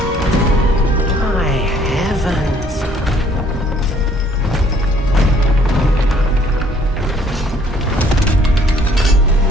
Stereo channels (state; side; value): normal; both; correlation 0.61